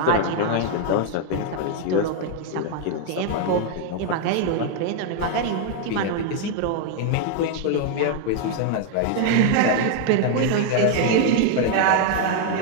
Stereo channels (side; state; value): both; different; correlation 0.00